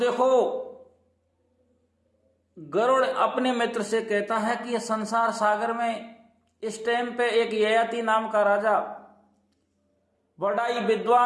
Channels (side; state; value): both; identical; correlation 1.00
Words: गरुड़ अपने मित्र से कहता है कि यह संसार सागर में इस टाइम पे एक ययाति नाम का राजा, बड़ा ही